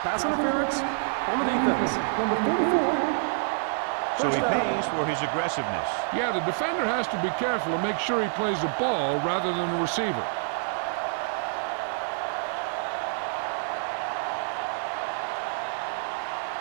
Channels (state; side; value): silent; left; 60 dB below the other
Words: Pass interference on the defense. Number 44. So he pays for his aggressiveness. Yeah, the defender has to be careful to make sure he plays the ball rather than the receiver.